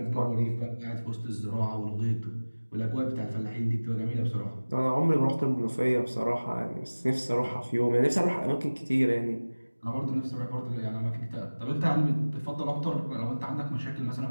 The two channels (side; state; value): both; inverted; correlation -1.00